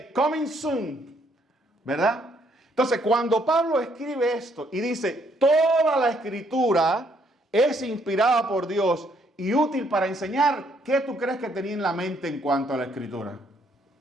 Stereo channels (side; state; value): both; normal; correlation 0.69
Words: coming soon. ¿Verdad? Entonces, cuando Pablo escribe esto y dice, toda la escritura es inspirada por Dios y útil para enseñar, ¿qué tú crees que tenía en la mente en cuanto a la escritura?